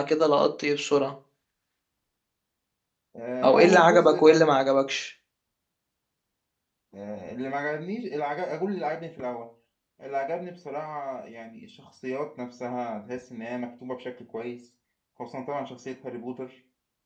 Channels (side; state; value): both; identical; correlation 1.00